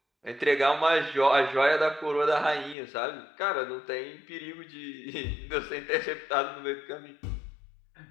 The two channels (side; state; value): right; drops out; at 2.8 s